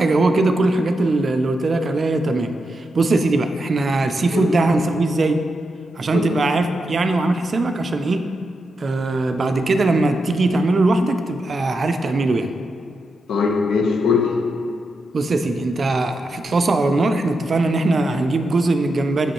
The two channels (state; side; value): normal; both; correlation 0.86